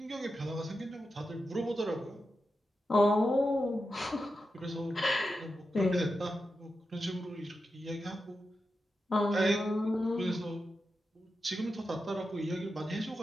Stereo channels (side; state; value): both; normal; correlation 0.89